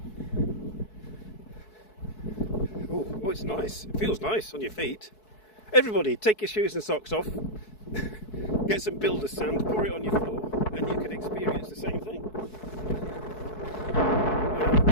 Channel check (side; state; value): right; late; 4.6 ms